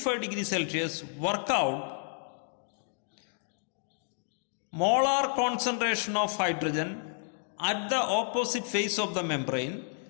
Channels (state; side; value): silent; right; 57 dB below the other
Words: degrees Celsius, work out molar concentration of hydrogen at the opposite face of the membrane,